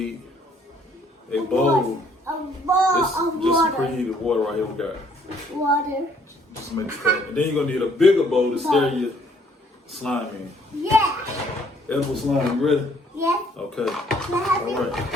a bowl. A bowl of Just water. preheated water right here. We got Water. just to make it cold. And then you're gonna need a bigger bowl to stir your slime in. Yeah. Edible slime, you ready? Yeah. Okay. Can I have All it? right.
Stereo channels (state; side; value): normal; both; correlation 0.63